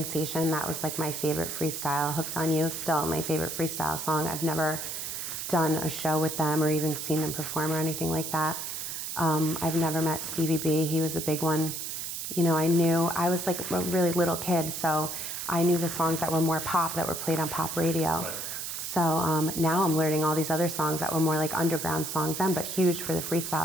that was like my favorite freestyle. Hooked on You, still my favorite freestyle song. I've never done a show with them or even seen them perform or anything like that. I've never met Stevie B. He was a big one. You know, I was like a really little kid, so I knew the songs that were more pop, that were played on pop radio. Right. So now I'm learning all these other songs that were more like underground songs then, but huge for the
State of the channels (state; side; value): noise; right; hiss, 5 dB below the sound